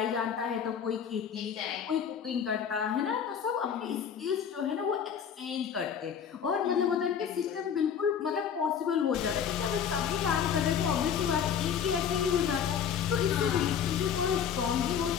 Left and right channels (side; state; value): right; quieter; 7.9 dB